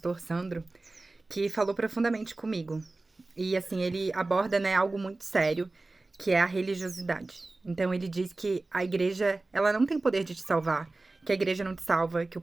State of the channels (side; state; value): left; quieter; 3.2 dB